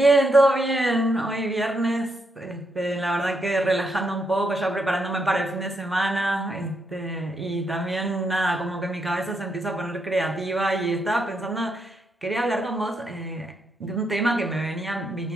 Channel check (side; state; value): both; normal; correlation 0.79